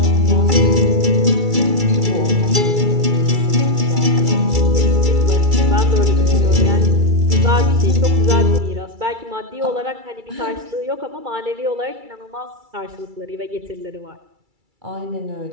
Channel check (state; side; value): late; left; 2.3 ms